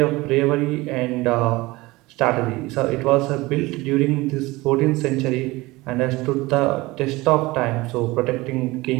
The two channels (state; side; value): quieter; left; 21.0 dB